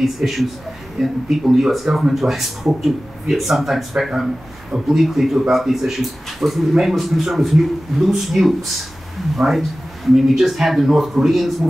issues, in people in the US government who I spoke to sometimes obliquely to about these issues, was the main concern was loose nukes, right? I mean, we just had the North Koreans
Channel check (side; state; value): both; normal; correlation 0.96